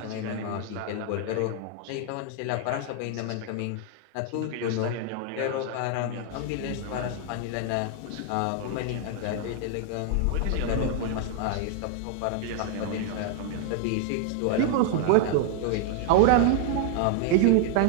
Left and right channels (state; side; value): different; both; correlation 0.00